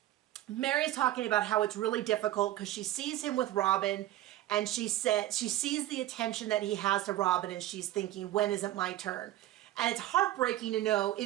Meri's talking about how it's really difficult because she sees him with Robyn, and she sees the attention that he has to Robyn, and she's thinking, when is it my turn? And it's heartbreaking to know it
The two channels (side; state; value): left; quieter; 14.5 dB